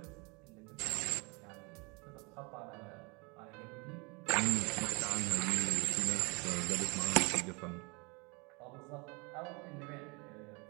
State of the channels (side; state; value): left; quieter; 29.3 dB